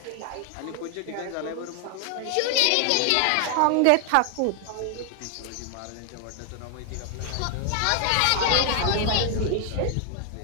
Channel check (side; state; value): both; different; correlation 0.00